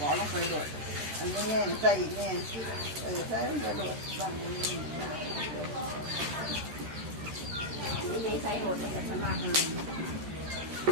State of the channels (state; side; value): late; left; 13 ms